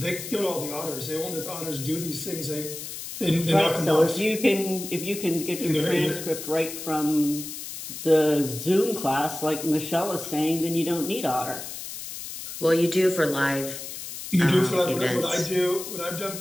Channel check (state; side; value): noise; left; hiss, 9 dB below the sound